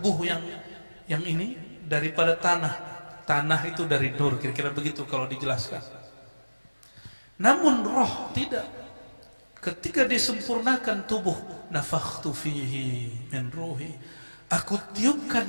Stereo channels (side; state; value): both; inverted; correlation -1.00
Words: yang ini daripada tanah. Tanah itu dari nur, kira-kira begitu kalau dijelaskan. Namun roh tidak. Ketika disempurnakan tubuh, nafakhtu fihi min ruhi, aku